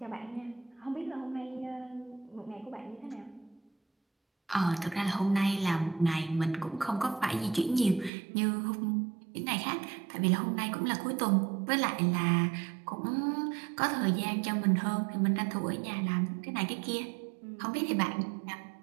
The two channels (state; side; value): drops out; left; at 8.1 s